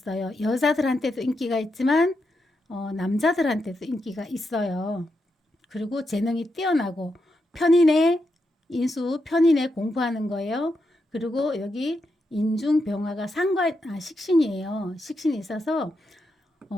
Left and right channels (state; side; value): normal; both; correlation 0.84